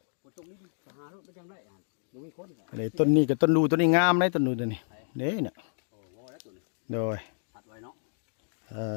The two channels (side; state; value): right; silent; digital silence